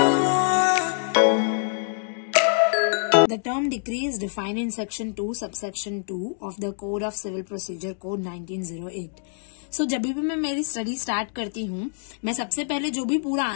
term decree is defined in section 2 subsection 2 of the Code of Civil Procedure Code 1908. So जब भी मैं मेरी study start करती हूँ, मैं सबसे पहले जो भी पूरा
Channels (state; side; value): silent; right; digital silence